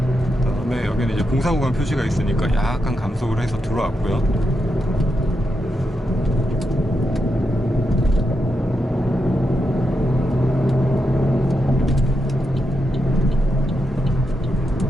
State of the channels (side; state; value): both; normal; correlation 0.85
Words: 그다음에 여기는 이제 공사 구간 표시가 있으니까 약간 감속을 해서 들어왔고요.